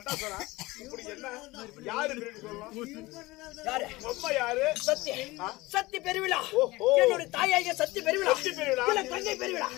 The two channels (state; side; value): quieter; right; 20.8 dB